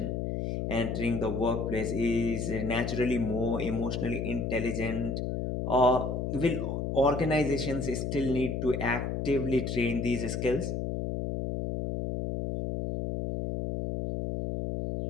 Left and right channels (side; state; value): left; noise; hum, 2 dB below the sound